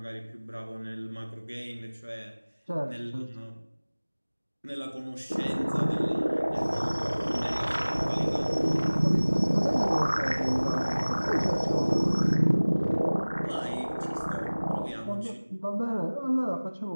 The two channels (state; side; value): inverted; both; correlation -1.00